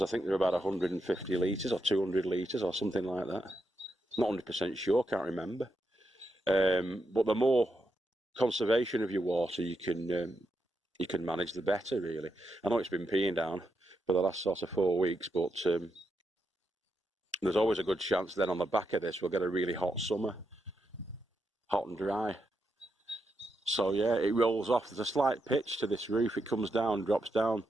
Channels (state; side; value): normal; both; correlation 0.83